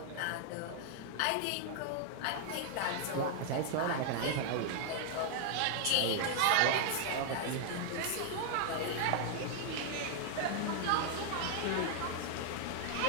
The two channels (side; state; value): both; different; correlation 0.00